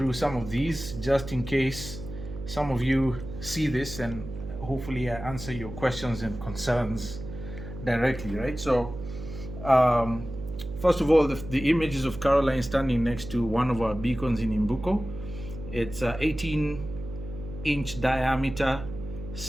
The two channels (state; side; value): noise; right; hum, 10 dB below the sound